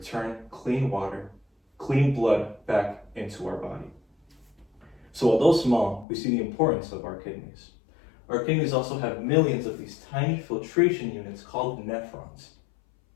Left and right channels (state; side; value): drops out; right; at 6.1 s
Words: clean water, clean blood back into our body. So although small, we see the importance of our kidneys. Our kidneys also have millions of these tiny filtration units called nephrons